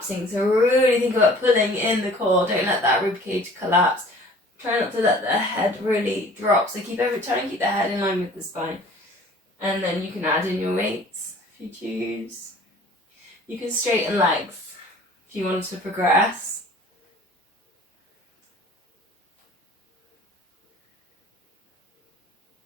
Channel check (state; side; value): normal; both; correlation 0.49